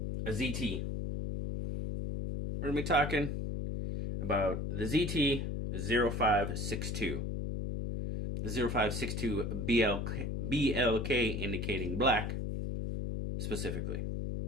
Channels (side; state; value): left; noise; hum, 2 dB below the sound